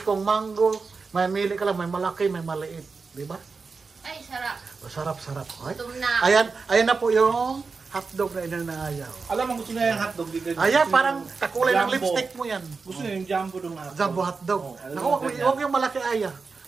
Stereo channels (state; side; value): quieter; left; 4.6 dB